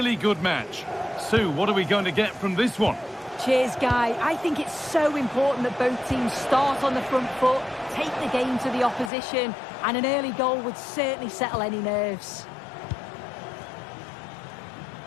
good match. Sue, what are we going to get from this one? Cheers, Guy. I think it's so important that both teams start on the front foot, take the game to the opposition, and an early goal would certainly settle any nerves.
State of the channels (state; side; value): drops out; right; at 9.1 s